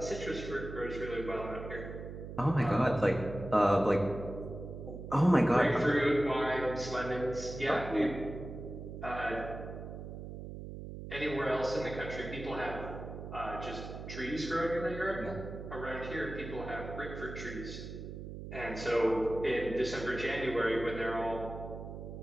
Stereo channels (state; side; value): noise; right; hum, 9 dB below the sound